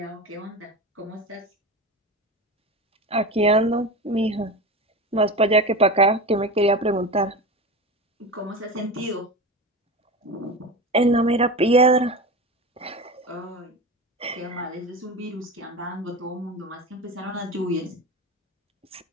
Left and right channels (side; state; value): both; normal; correlation 0.26